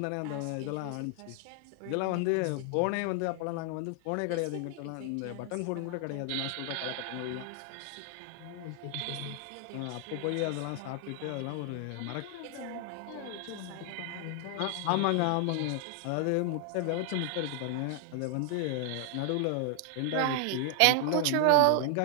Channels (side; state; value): both; different; correlation 0.00